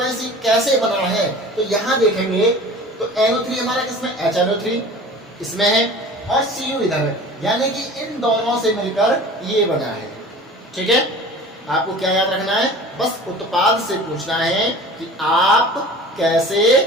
ही कैसे बना है, तो यहाँ देखेंगे तो NO3 हमारा किसमें, HNO3 इसमें है और Cu इधर है, यानी कि इन दोनों से मिलकर ये बना है, ठीक है। आपको क्या याद रखना है? बस उत्पाद से पूछना है कि आप कैसे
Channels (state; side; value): normal; both; correlation 0.41